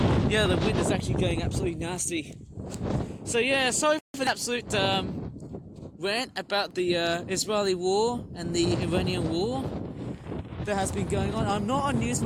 The wind is actually going absolutely nasty. So yeah, sorry for the absolute rant about the Israeli war and the Iranian war that has been going on. I'm not a news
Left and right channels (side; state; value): both; identical; correlation 1.00